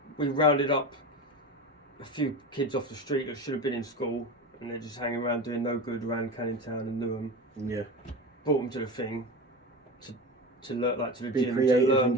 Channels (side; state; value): both; normal; correlation 0.26